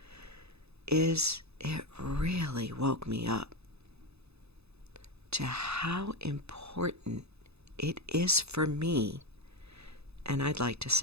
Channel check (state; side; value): late; left; 0.79 ms